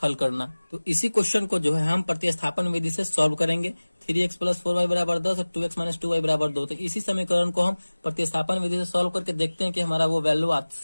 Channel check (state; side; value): inverted; both; correlation -1.00